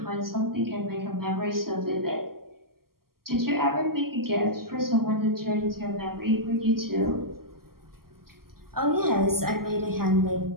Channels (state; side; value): late; left; 0.92 ms